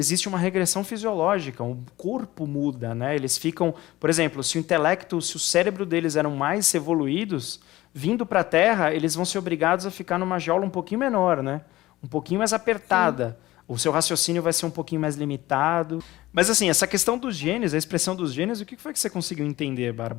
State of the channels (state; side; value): quieter; right; 17.4 dB